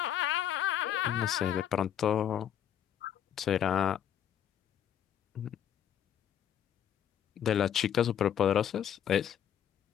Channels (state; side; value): quieter; right; 9.7 dB